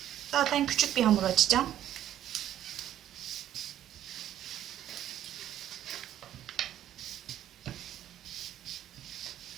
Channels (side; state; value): left; quieter; 11.6 dB